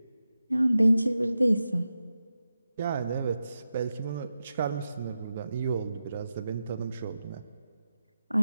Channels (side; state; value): both; inverted; correlation -0.91